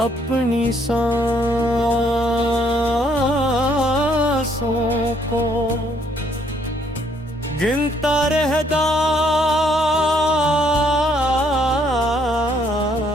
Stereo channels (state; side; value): normal; both; correlation 0.67